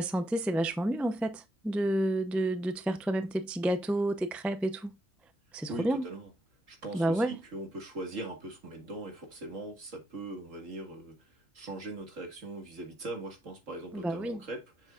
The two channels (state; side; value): normal; both; correlation 0.80